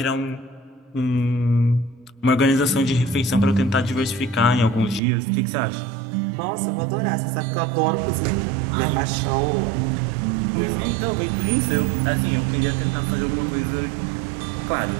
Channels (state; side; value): drops out; left; at 5.0 s